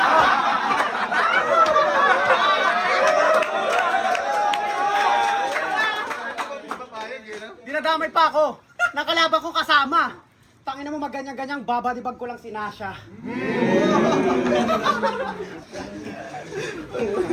Dinadamay pa ako. Nakalaban ko kasama. Tangina mo maganyan-ganyang babadibag ko lang si Nasha.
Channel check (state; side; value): identical; both; correlation 1.00